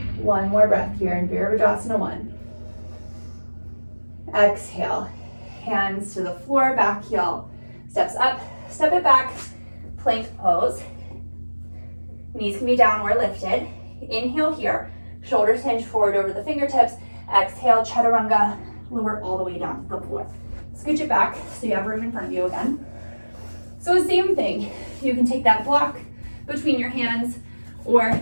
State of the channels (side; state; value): both; inverted; correlation -1.00